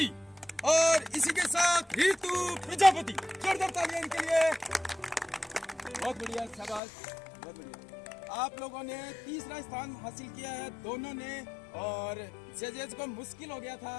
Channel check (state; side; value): drops out; right; at 6.8 s